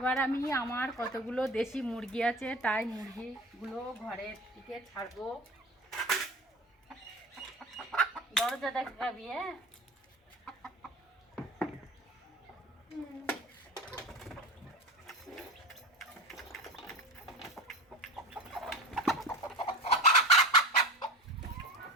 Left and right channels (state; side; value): normal; both; correlation 0.30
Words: আমি আমার কতগুলো দেশি মুরগি আছে তাই মুরগিগুলো ঘরের দিকে ছাড়বো। দরজা দেখাবি? হ্যাঁ,